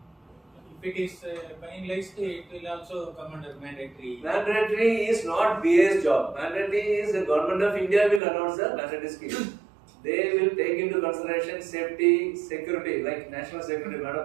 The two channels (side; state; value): left; drops out; at 8.2 s